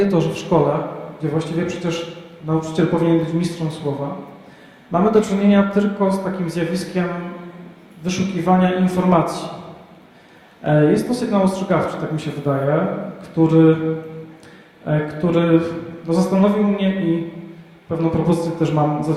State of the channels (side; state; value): both; identical; correlation 1.00